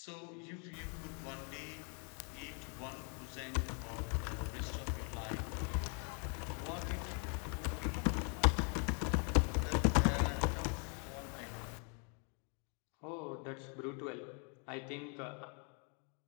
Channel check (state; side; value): quieter; right; 37.9 dB